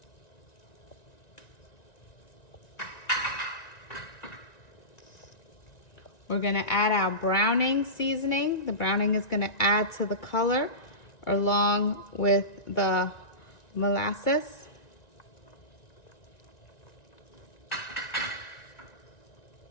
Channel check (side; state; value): right; late; 1.9 ms